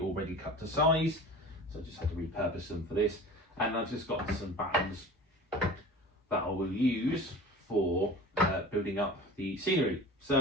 cut to size, so I just had to repurpose them for this. And I've just got some battens that I will use for building up the scenery.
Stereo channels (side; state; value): both; normal; correlation 0.38